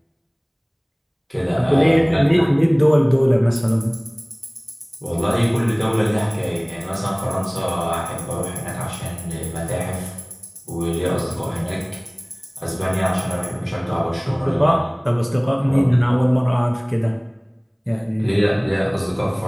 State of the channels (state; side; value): identical; both; correlation 1.00